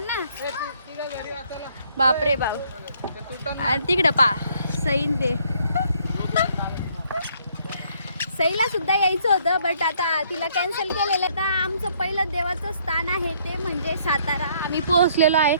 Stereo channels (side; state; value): both; inverted; correlation -0.66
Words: ना, बापरे बाप। आणि तिकडं पा सईन ते सईला सुद्धा यायचं होतं, बट आता तिला कॅन्सल केलेलं। तर आमचं पहिलं देवाचं स्थान आहे ते म्हणजे सातारा। आम्ही पोहोचलेलो आहे।